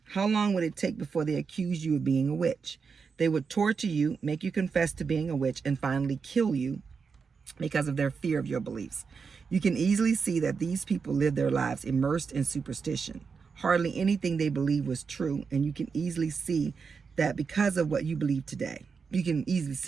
How long would it take before they accused you of being a witch? They would torture you, make you confess to being a witch, and finally kill you because of their fear of your beliefs. You can easily see that these people live their lives immersed in superstition. Hardly anything they believe was true, and you can easily see that because of what you believe today. You can easily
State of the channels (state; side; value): quieter; left; 5.5 dB